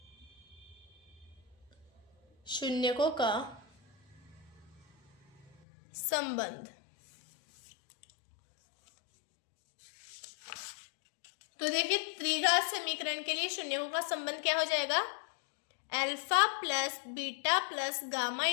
शून्यकों का संबंध। तो देखिए त्रिघात समीकरण के लिए शून्यकों का संबंध क्या हो जाएगा, alpha plus beta plus gamma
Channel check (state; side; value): drops out; right; at 5.6 s